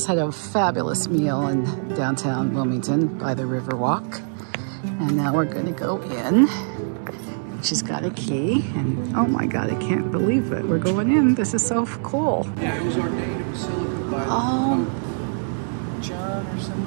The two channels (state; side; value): silent; left; digital silence